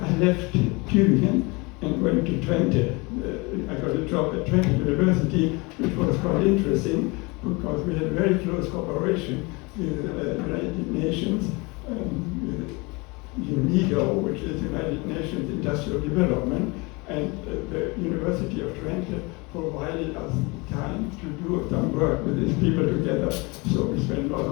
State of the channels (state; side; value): quieter; right; 26.7 dB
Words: left Tübingen and went to Twente. I got a job at Twente University, which was quite interesting because we had very close cooperation with the United Nations, with UNIDO, which is United Nations Industrial Development, and the University of Twente provided us time to do some work with these people together. So we spent a lot